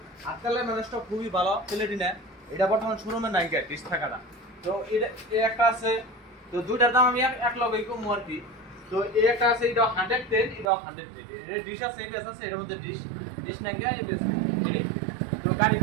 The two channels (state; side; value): drops out; left; at 10.7 s